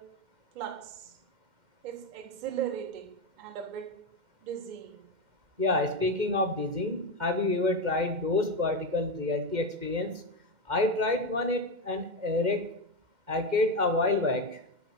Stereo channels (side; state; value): left; late; 2.1 ms